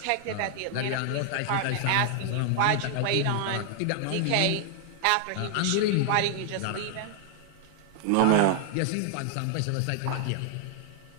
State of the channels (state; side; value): different; both; correlation 0.00